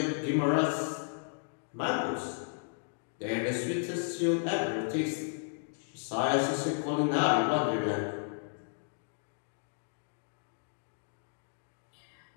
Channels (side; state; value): right; silent; digital silence